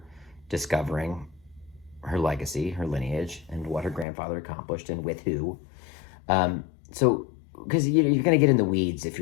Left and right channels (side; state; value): right; drops out; at 4.0 s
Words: discovering her legacy, her lineage, and what her grandfather accomplished and with who. So, because you're going to get in the weeds if